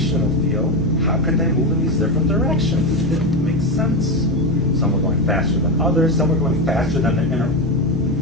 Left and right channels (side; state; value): both; normal; correlation 0.14